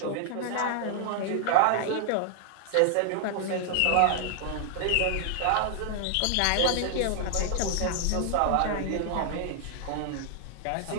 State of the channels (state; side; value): different; both; correlation -0.01